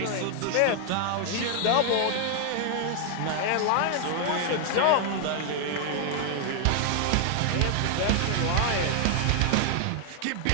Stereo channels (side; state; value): both; different; correlation 0.00